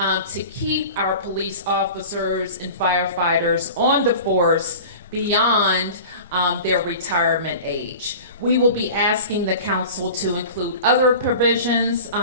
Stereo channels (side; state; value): both; inverted; correlation -0.38